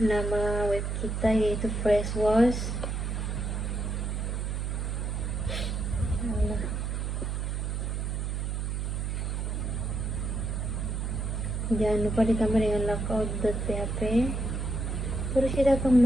web kita, yaitu Freshwash. Jangan lupa ditambah dengan logout.php. Terus kita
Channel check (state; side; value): noise; right; hum, 1 dB below the sound